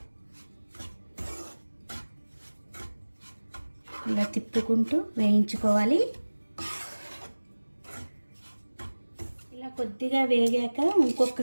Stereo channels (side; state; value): both; inverted; correlation -1.00